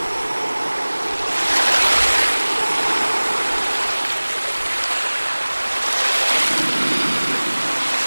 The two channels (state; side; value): inverted; both; correlation -1.00